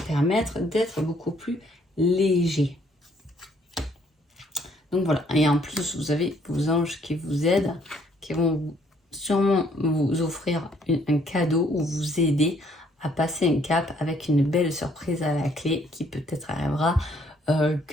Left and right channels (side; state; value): both; normal; correlation 0.65